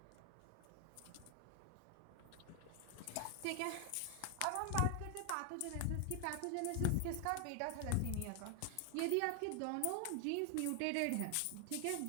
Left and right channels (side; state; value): both; different; correlation 0.00